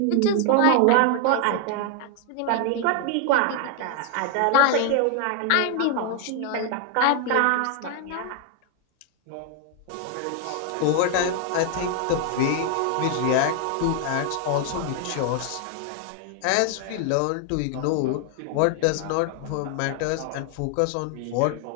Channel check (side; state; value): both; different; correlation 0.00